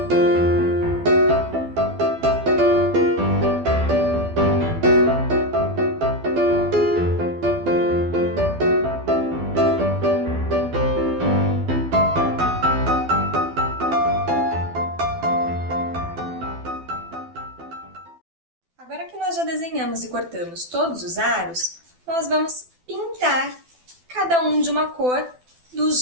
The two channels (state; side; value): late; left; 12 ms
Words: Agora que nós já desenhamos e cortamos todos os aros, nós vamos pintar cada um de uma cor